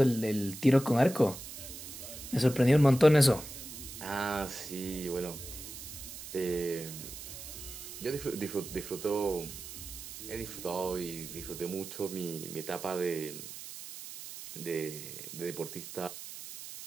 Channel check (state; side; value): noise; right; hiss, 11 dB below the sound